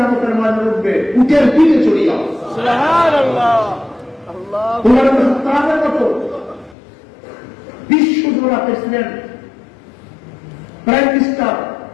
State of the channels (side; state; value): right; drops out; at 6.8 s